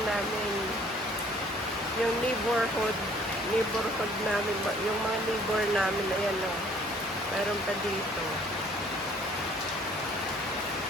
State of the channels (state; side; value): normal; both; correlation 0.58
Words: Yung neighborhood namin. Yung mga neighbor namin, ayan, no? Mayroon pa dito.